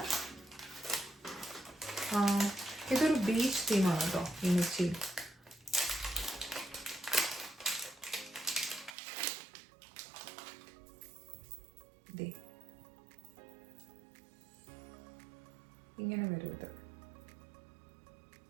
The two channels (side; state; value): left; drops out; at 9.0 s